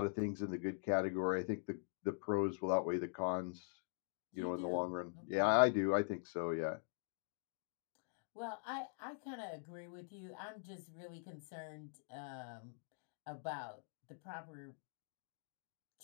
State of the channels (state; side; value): silent; right; digital silence